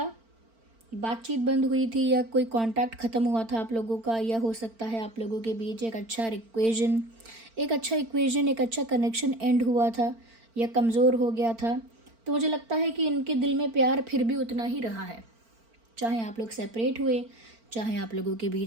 बातचीत बंद हुई थी या कोई कांटेक्ट ख़त्म हुआ था आप लोगों का, या हो सकता है आप लोगों के बीच एक अच्छा इक्वेशन, एक अच्छा कनेक्शन एंड हुआ था या कमज़ोर हो गया था। तो मुझे लगता है कि इनके दिल में प्यार फिर भी उतना ही रहा है, चाहे आप लोग सेपरेट हुए, चाहे आप लोगों के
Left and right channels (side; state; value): left; late; 4.4 ms